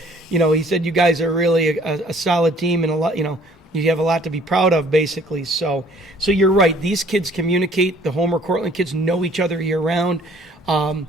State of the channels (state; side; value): normal; both; correlation 0.57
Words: he said, you guys are really a solid team and a lot, you have a lot to be proud of, basically. So you're right. These kids communicate. The Homer Cortland kids know each other year round.